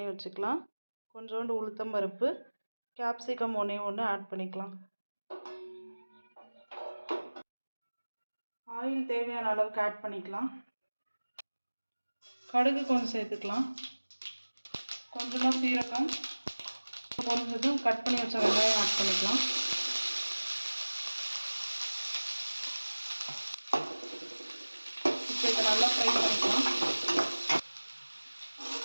வச்சுக்கலாம், கொஞ்சோண்டு உளுத்தம்பருப்பு, கேப்சிகம் 1 ஆட் பண்ணிக்கலாம். ஆயில் தேவையான அளவுக்கு ஆட் பண்ணிக்கலாம். கடுகு கொஞ்சம் சேர்த்துக்கலாம், கொஞ்சமாக சீரகம், பொரிஞ்சதும் கட் பண்ணி வச்ச வெங்காயம் ஆட் பண்ணிக்கலாம். இப்போ இதை நல்லா ஃப்ரை பண்ணிக்கலாம்.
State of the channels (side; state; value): both; inverted; correlation -1.00